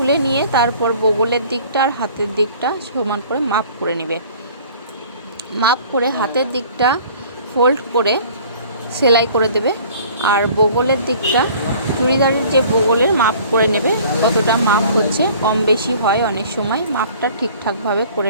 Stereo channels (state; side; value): inverted; both; correlation -0.50